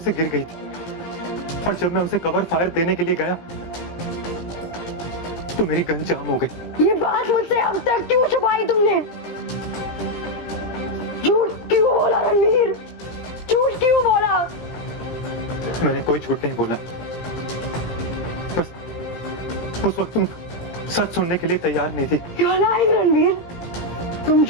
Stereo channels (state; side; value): late; right; 17 ms